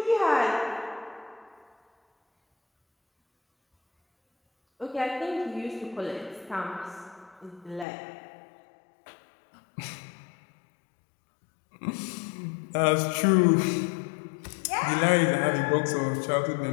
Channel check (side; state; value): right; drops out; at 7.9 s